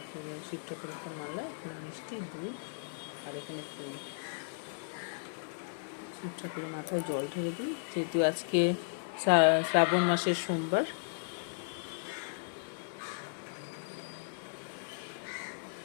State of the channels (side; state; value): right; silent; digital silence